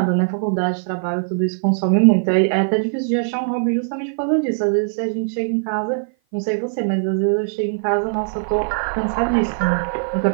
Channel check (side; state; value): left; silent; 55 dB below the other